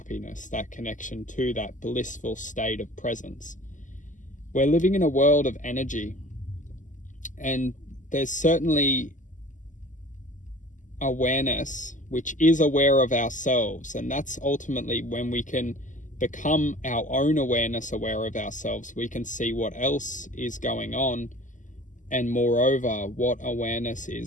that connection to that blissful state of presence. We're living in a world of energy, and there's certainly awareness which is aware of ourselves, and that's ultimately when we can become our own awareness, aware of ourselves. We can see what else is going on, and moreover, what awareness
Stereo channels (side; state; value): right; late; 0.37 ms